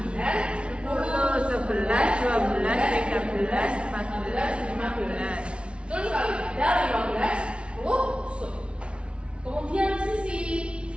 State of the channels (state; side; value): late; left; 0.059 ms